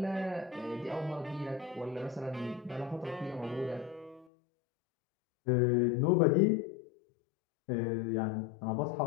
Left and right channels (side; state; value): right; drops out; at 4.2 s